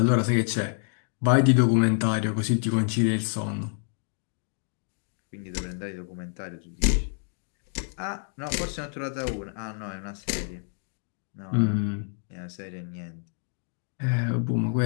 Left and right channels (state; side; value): silent; right; 59 dB below the other